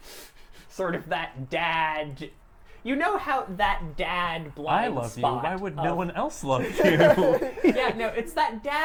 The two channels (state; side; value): identical; both; correlation 1.00